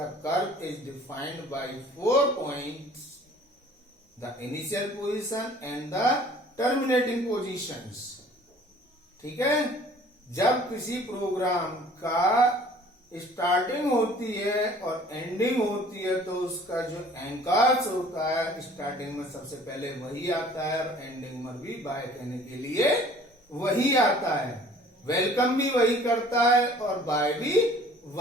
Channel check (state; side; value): normal; both; correlation 0.51